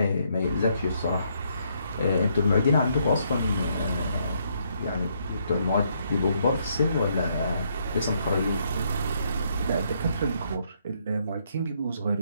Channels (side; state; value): both; inverted; correlation -0.72